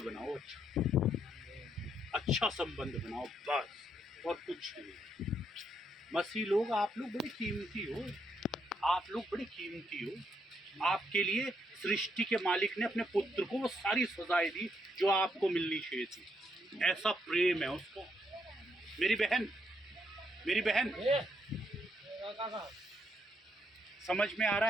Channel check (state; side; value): normal; both; correlation 0.76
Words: अच्छा संबंध बनाओ, बस, और कुछ नहीं। मसीह लोग, आप लोग बड़े कीमती हो, आप लोग बड़े कीमती हो। आपके लिए सृष्टि के मालिक ने अपने पुत्र को वो सारी सजाएं दी जो आपको मिलनी चाहिए थी। ऐसा प्रेम है उसका। मेरी बहन समझ में आ रहा